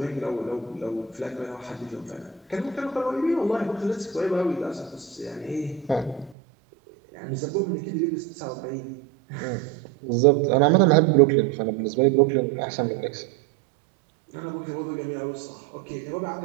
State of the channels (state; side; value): drops out; left; at 6.4 s